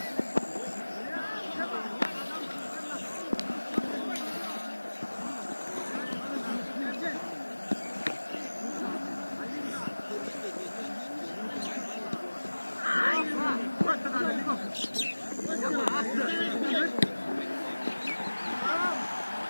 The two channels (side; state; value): both; inverted; correlation -1.00